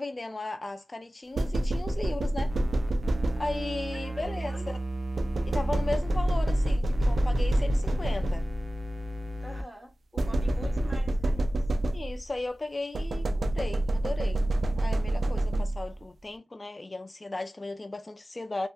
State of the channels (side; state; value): both; normal; correlation 0.96